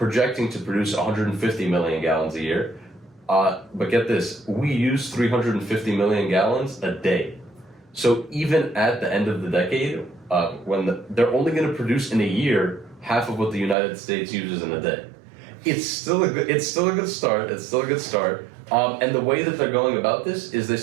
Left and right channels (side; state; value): left; drops out; at 13.8 s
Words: to produce 150 million gallons a year. But get this, we use 350 million gallons a day. So even at the end of the decade, they're only going to produce in a year half of what the United States uses in a day. It's still a good start. And the way that they're going about this is they